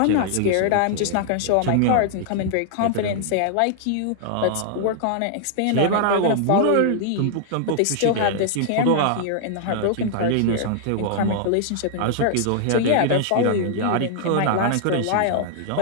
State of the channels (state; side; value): different; both; correlation -0.01